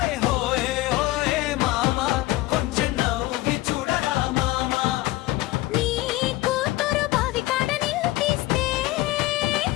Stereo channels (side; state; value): right; quieter; 18.4 dB